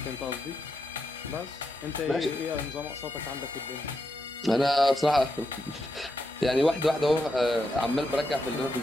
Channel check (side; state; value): both; normal; correlation 0.84